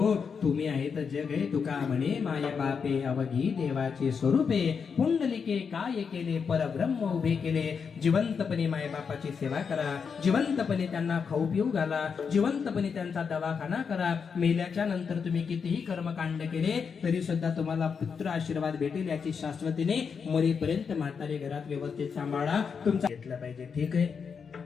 तुम्ही आहे तर जग आहे. तुका म्हणे माय बापे अवघी देवाचे स्वरूपे पुंडलिके काय केले परब्रह्म उभे केले. जिवंतपणे माय बापाची सेवा करा, जिवंतपणे त्यांना खाऊ पिऊ घाला, जिवंतपणे त्यांचा दवाखाना करा. मेल्याच्या नंतर तुम्ही कितीही कर्मकांड केले तरी सुद्धा तुम्हाला पुत्र आशीर्वाद भेटेल याची शाश्वतीने मरेपर्यंत म्हातारे घरात व्यवस्थित सांभाळा. तुमचा घेतला पाहिजे. ठीक आहे,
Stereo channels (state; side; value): quieter; right; 6.1 dB